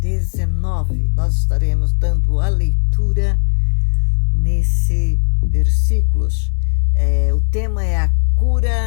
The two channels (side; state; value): right; silent; digital silence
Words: Nós estaremos dando a leitura nesses versículos. O tema é a